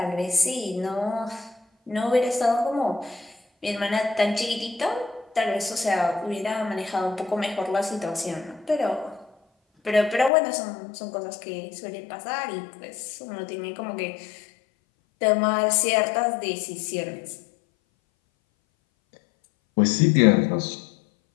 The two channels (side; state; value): right; drops out; at 10.3 s